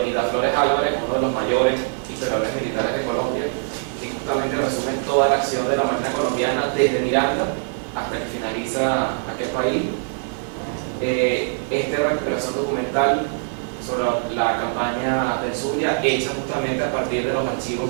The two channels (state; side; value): silent; left; 64 dB below the other